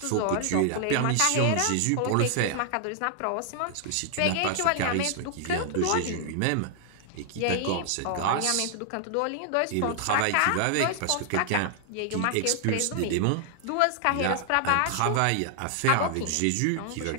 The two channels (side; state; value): both; different; correlation 0.00